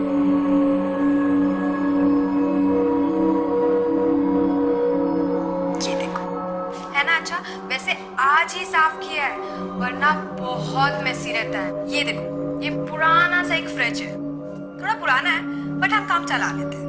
ये देखो, है ना अच्छा। वैसे आज ही साफ किया है, वरना बहुत मेसी रहता है। ये देखो, ये पुराना सा एक फ्रिज है, थोड़ा पुराना है बट हम काम चला लेते हैं।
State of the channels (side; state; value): both; identical; correlation 1.00